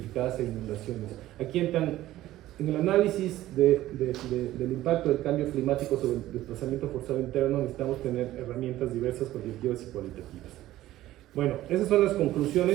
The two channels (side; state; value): left; quieter; 14.9 dB